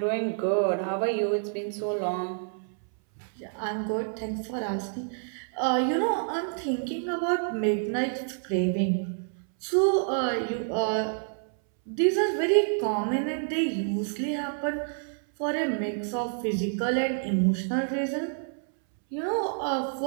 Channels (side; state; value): left; silent; 59 dB below the other